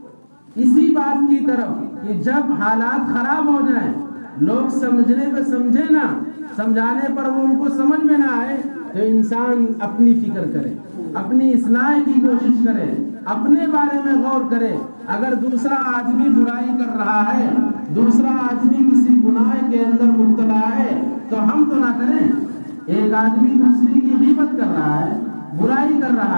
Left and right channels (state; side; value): inverted; both; correlation -1.00